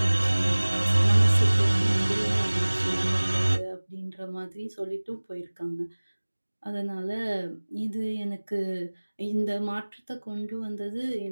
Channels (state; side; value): inverted; both; correlation -1.00